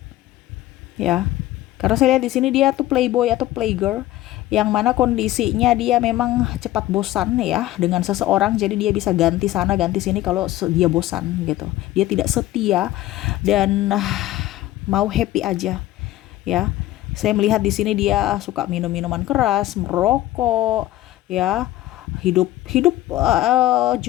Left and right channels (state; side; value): quieter; right; 15.5 dB